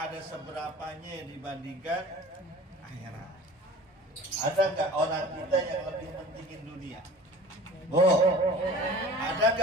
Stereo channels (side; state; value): both; normal; correlation 0.43